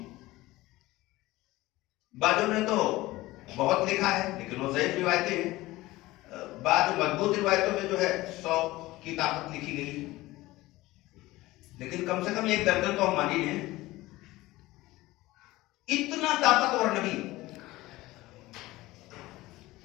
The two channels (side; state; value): right; quieter; 18.6 dB